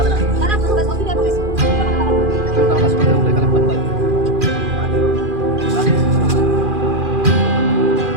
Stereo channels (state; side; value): late; left; 2.4 ms